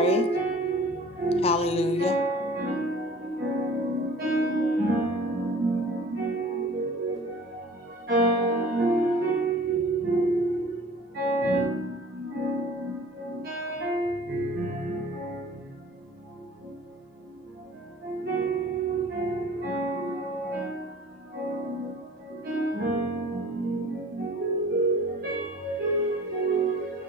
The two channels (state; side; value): normal; both; correlation 0.46